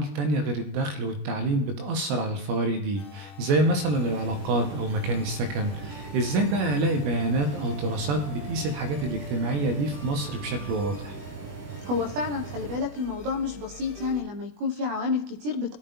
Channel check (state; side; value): late; left; 21 ms